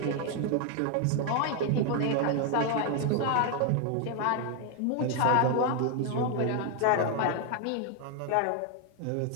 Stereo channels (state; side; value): different; both; correlation 0.01